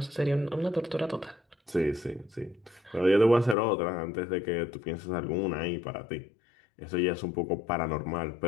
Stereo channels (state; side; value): drops out; right; at 3.6 s